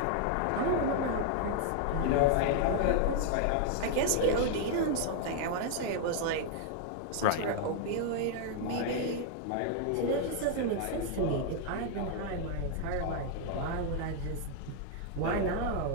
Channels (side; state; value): both; different; correlation 0.00